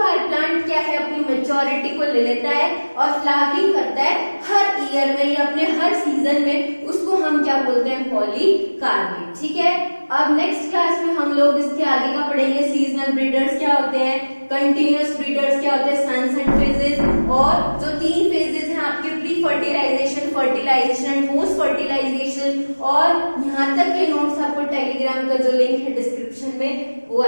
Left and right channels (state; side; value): inverted; both; correlation -1.00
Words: प्लांट क्या है अपनी मेच्योरिटी को ले लेता है और फ्लावरिंग करता है हर ईयर में या अपने हर सीजन में, उसको हम क्या बोलते हैं, पॉलीकार्पिक, ठीक है। अब नेक्स्ट क्लास में हम लोग इसके आगे का पढ़ेंगे, सीजनल ब्रीडर्स क्या होते हैं, कंटिन्यूअस ब्रीडर्स क्या होते हैं, सनसेट फेजेस, और जो 3 फेजेस हैं आपके pre fertilisation, fertilisation and post fertilisation. और यहाँ तक के नोट्स आपको टेलीग्राम का जो लिंक है डिस्क्रिप्शन में वो